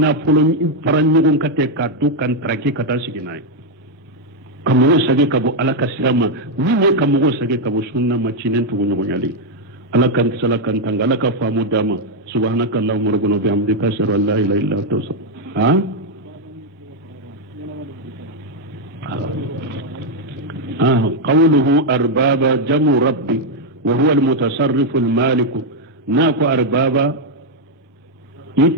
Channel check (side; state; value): both; normal; correlation 0.00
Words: نفلو فرانيغون كاتي كاتو كان تركي كتا سيغناي كمغون ساكيك بو على كسرما ني كمغون ساكيك بو سنة ما تشينن تو نيغونيالي ala kan sala kan tanga ala ka famu dama subhanaka allahumma rabbana bihamdika ashhadu an la ilaha illa anta قوله أربابا جمع ربي وهو المتصرف المالك ناكو أربابا